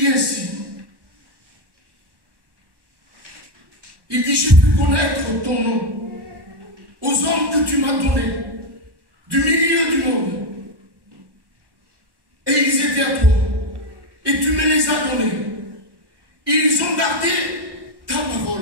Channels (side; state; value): left; late; 1.1 ms